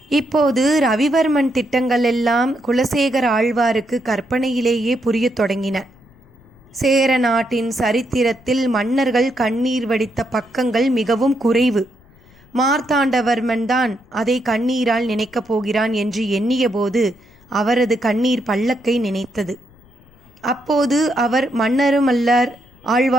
இப்போது ரவிவர்மன் திட்டங்கள் எல்லாம் குலசேகர ஆழ்வாருக்கு கற்பனையிலேயே புரியத் தொடங்கின. சேர நாட்டின் சரித்திரத்தில் மன்னர்கள் கண்ணீர் வடித்த பக்கங்கள் மிகவும் குறைவு. மார்த்தாண்டவர்மன் தான் அதை கண்ணீரால் நினைக்கப் போகிறான் என்று எண்ணியபோது அவரது கண்ணீர் பல்லக்கை நினைத்தது. அப்போது அவர் மன்னரும் அல்லர்,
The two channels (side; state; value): left; noise; rumble, 28 dB below the sound